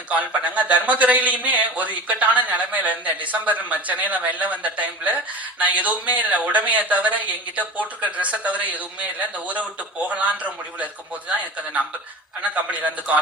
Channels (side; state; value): both; normal; correlation 0.34